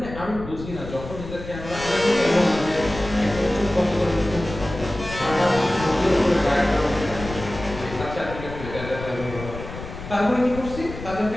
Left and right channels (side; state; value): left; noise; rumble, 11 dB below the sound